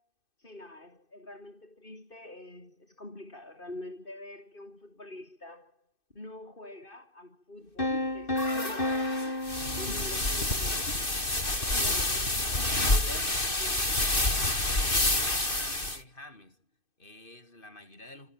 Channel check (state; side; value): late; right; 2.6 ms